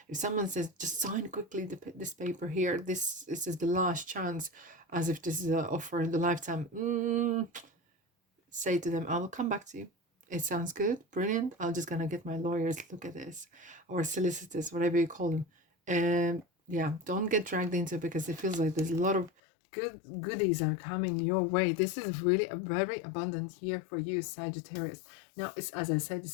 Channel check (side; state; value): right; drops out; at 19.3 s